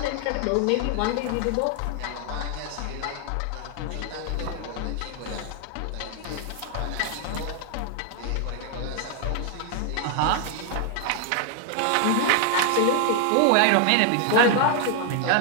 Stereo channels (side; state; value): both; different; correlation 0.00